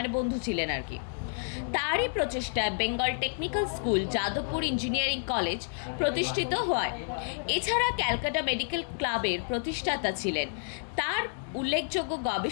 বন্ধু ছিলেন আর কি। তারই প্রচেষ্টায় Bengal technical school, Jadavpur engineering college প্রতিষ্ঠিত হয়। এছাড়া ক্যালকাটা মেডিকেল ক্লাবের প্রতিষ্ঠাতা ছিলেন। তার উল্লেখযোগ্য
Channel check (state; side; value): silent; right; digital silence